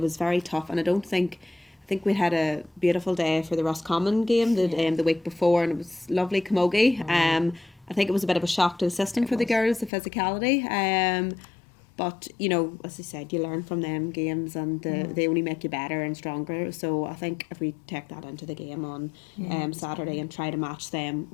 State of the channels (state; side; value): drops out; right; at 9.9 s